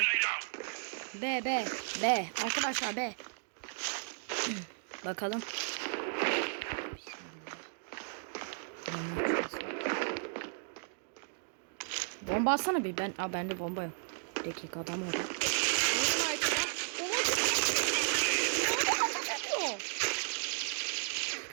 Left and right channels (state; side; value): silent; left; digital silence